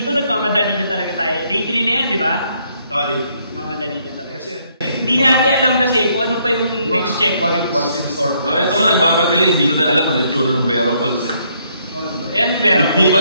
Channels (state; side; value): inverted; both; correlation -0.70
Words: nagmamadali na talaga tayo. Day 3 na yan, di ba? Oo, day 3. Mamadali na talaga. Hindi natin alam kasi kung ano pa yung next checkpoint. What's in store? Ito ko nagmamadali, hindi ko na alam ano yung tsura ng Vera Falls. Yan, Vera. Hindi pa